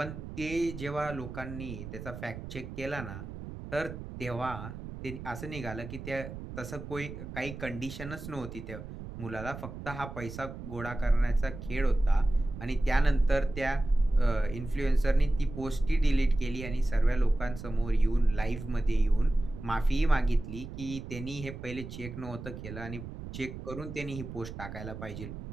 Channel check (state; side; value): noise; right; rumble, 10 dB below the sound